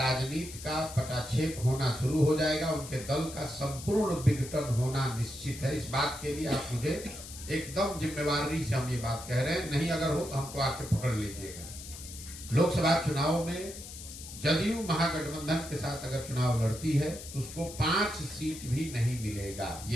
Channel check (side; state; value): left; noise; hiss, 13 dB below the sound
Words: का पटाक्षेप होना शुरू हो जाएगा। उनके दल का संपूर्ण विघटन होना निश्चित है। इस बात के लिए आप मुझे एकदम जिम्मेवारी से हम ये बात कह रहे हैं, नहीं अगर हो तो हमको आके पकड़ लीजिएगा। लोकसभा चुनाव में जदयू महागठबंधन के साथ अगर चुनाव लड़ती है, उसको 5 सीट भी नहीं मिलेगा।